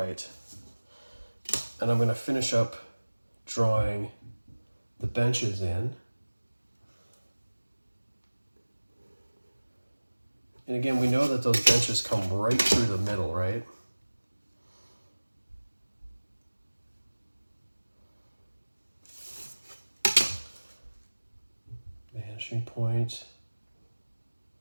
and I'm going to finish up drawing the benches in. And again, we know that those benches come right through the middle, right? Vanishing point.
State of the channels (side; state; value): both; inverted; correlation -1.00